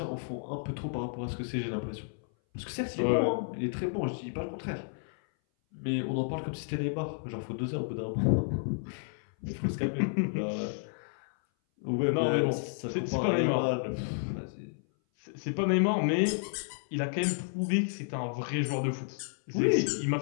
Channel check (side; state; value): right; silent; 57 dB below the other